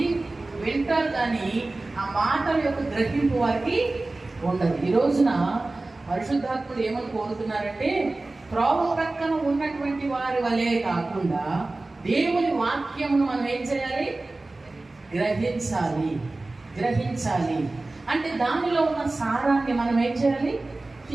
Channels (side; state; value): left; quieter; 3.1 dB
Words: వింటారు, కానీ ఆ మాటల యొక్క గ్రహింపు వారికి ఉండదు. ఈ రోజున పరిశుద్ధాత్ముడు ఏమని కోరుతున్నారంటే త్రోవ ప్రక్కన ఉన్నటువంటి వారి వలే కాకుండా దేవుని వాక్యమును మనం ఏం చేయాలి? గ్రహించాలి. అంటే దానిలో ఉన్న సారాన్ని మనం ఏం చేయాలి?